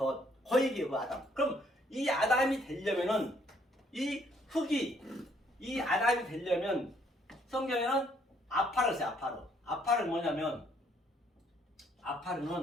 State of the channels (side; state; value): both; normal; correlation 0.67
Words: 그 얘기예요. 그 아담. 그럼 이 아담이 되려면은 이 흙이 이 아담이 되려면 성경에는 아파를 써요. 아파를 뭐냐면